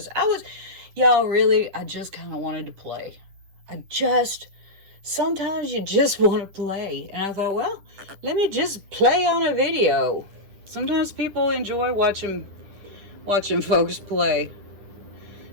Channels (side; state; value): left; late; 10 ms